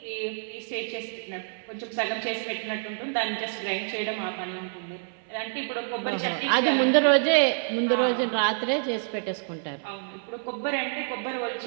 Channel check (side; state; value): left; silent; 60 dB below the other